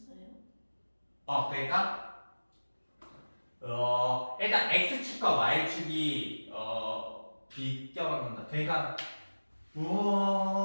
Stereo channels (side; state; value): both; inverted; correlation -1.00